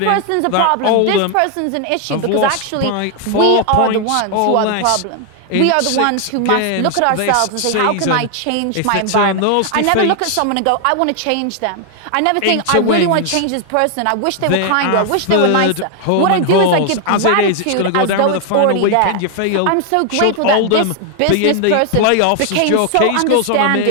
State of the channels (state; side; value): different; both; correlation 0.00